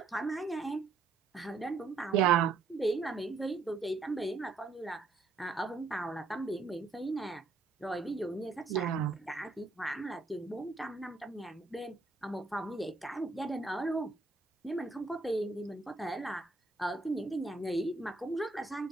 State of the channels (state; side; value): quieter; left; 3.9 dB